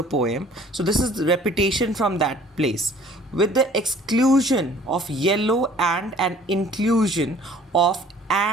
poem. So this is the repetition from that place, with the exclusion of yellow and an inclusion of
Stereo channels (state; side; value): normal; both; correlation 0.53